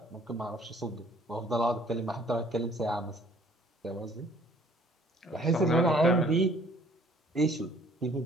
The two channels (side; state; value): both; normal; correlation 0.58